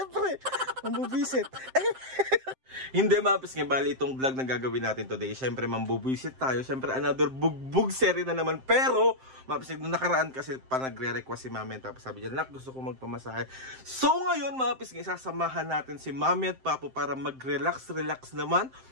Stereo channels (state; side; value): late; left; 7.6 ms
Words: mambubisit. Hindi mga kapisingin, bali itong vlog na gagawin natin today. Siyempre mambubisit tayo, siyempre another bugbog series na naman. Pero, mga kapisingin, nung nakaraan kasi pa nagre-request si Mami. Tapos sabi niya, nak, gusto ko magpamasahe. So ngayon mga kapisingin, sasamahan natin si Mami at Papo para mag-relax naman.